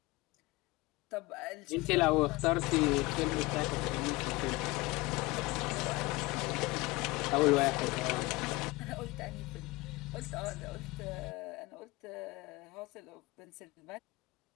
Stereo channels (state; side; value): quieter; right; 21.8 dB